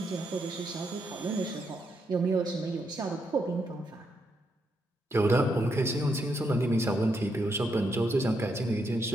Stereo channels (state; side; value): normal; both; correlation 0.80